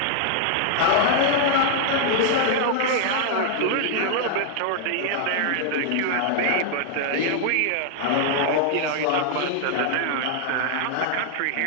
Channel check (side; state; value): both; different; correlation -0.01